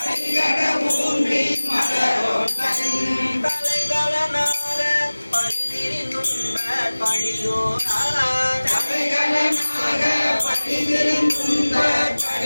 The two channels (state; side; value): inverted; both; correlation -1.00